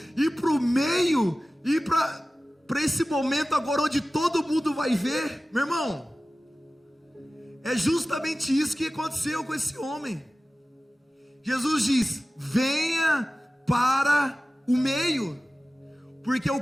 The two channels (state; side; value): normal; both; correlation 0.96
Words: ir para o meio, ir para esse momento agora onde todo mundo vai ver. Meu irmão, é justamente isso que aconteceu com esse homem. Jesus diz: venha para o meio, porque o